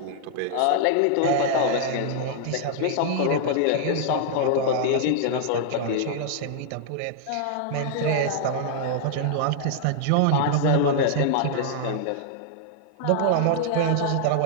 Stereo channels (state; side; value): different; both; correlation -0.01